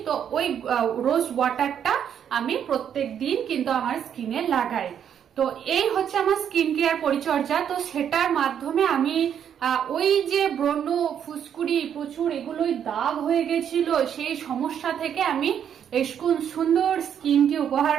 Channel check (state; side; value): quieter; left; 8.8 dB